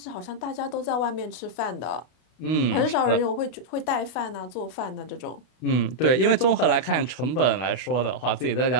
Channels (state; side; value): late; right; 32 ms